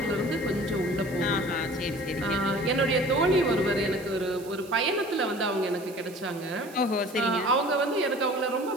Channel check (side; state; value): right; noise; hiss, 20 dB below the sound